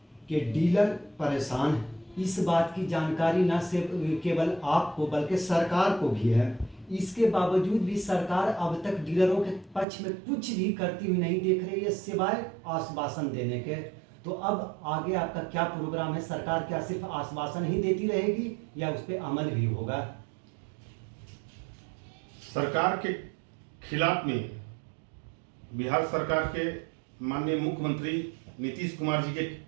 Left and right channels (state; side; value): drops out; left; at 9.9 s